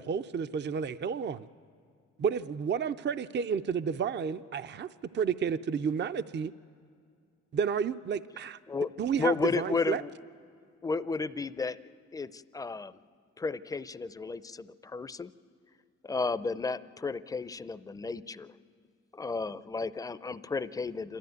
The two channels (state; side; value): normal; both; correlation 0.46